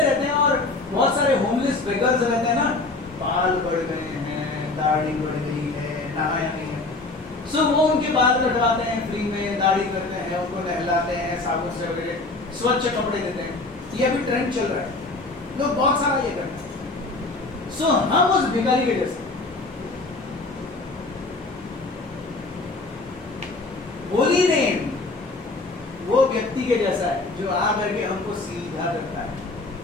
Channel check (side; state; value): right; quieter; 3.3 dB